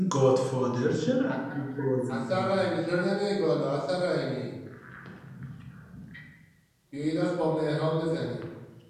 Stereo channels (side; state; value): both; identical; correlation 1.00